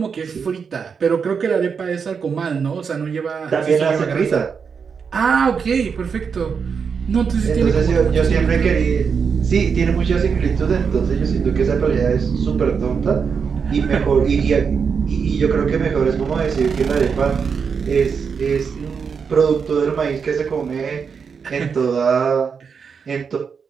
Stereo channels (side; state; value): left; quieter; 6.1 dB